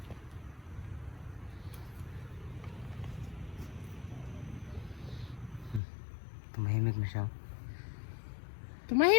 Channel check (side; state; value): right; drops out; at 5.8 s